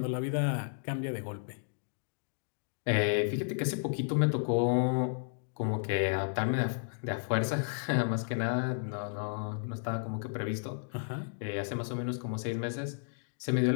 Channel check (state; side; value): silent; right; digital silence